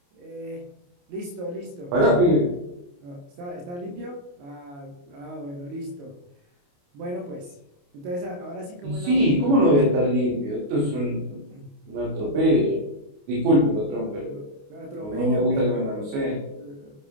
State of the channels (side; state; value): left; late; 28 ms